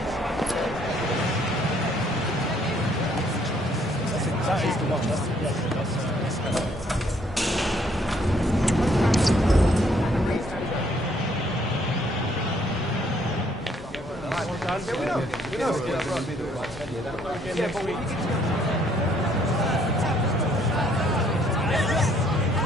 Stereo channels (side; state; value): both; normal; correlation 0.66